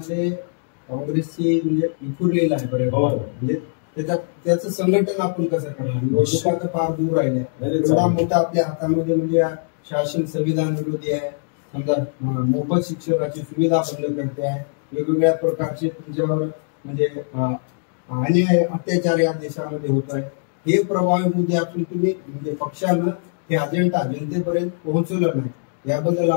काँग्रेसची म्हणजे विखुरलेलं आहे बरोबर. म्हणजे त्याचं संघटन आपण कसं करणार? निवडणुका तर फार दूर राहिल्या. एवढा मोठा आपल्या हातामध्ये म्हणजे शासन संविधान विरोधी आहे. समजा मोफत शिक्षणाची सुविधा बंद करते आहे. वेगवेगळ्या प्रकारचे तुमच्यावर म्हणजे अन्याय अत्याचार या देशामध्ये होत आहे. हे प्रभावी मुद्दे असून तुम्ही म्हणजे पक्षानं हे अजेंडा जनतेपर्यंत पोहोचवलं नाही, याबद्दल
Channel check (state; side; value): silent; right; digital silence